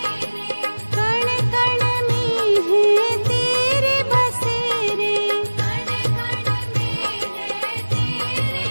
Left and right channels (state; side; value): inverted; both; correlation -1.00